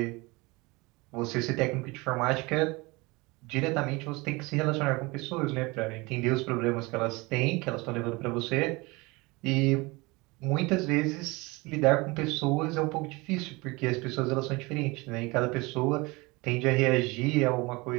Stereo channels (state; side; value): quieter; left; 24.3 dB